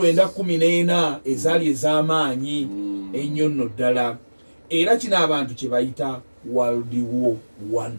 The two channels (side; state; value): both; inverted; correlation -1.00